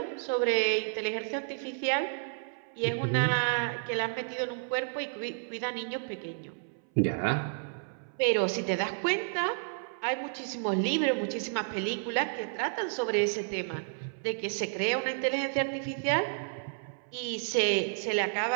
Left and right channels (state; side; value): silent; left; 57 dB below the other